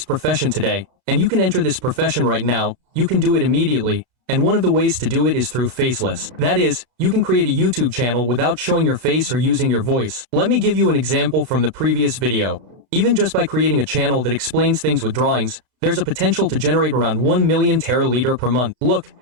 profession today, and you can enter this profession right now. You can do it immediately, and one of the ways to do it is through faceless. That is, you can create a YouTube channel without showing your face or using your voice. Let me give you an example from the previous video. Even just by creating a channel that explains things with drawings, there's a potential to generate around 1 million teraliter per month. Look,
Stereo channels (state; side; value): late; left; 32 ms